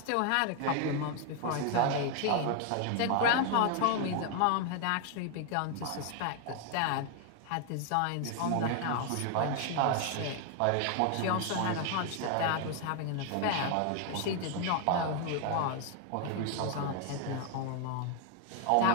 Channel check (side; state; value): both; different; correlation 0.01